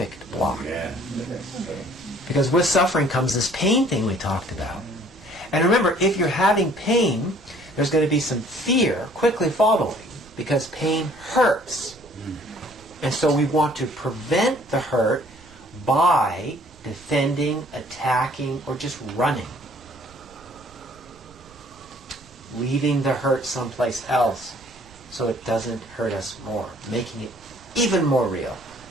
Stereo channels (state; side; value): noise; right; rumble, 26 dB below the sound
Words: block. Yeah. Because with suffering comes this pain thing we talked about. And remember, if you're having pain, there's going to be some fear quickly following, because pain hurts. And so we want to prevent the hurt by defending, attacking, or just running. Leaving the hurt someplace else so it doesn't hurt us more, making it even more real